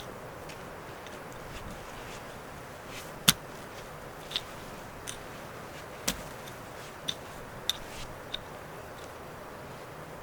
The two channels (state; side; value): identical; both; correlation 1.00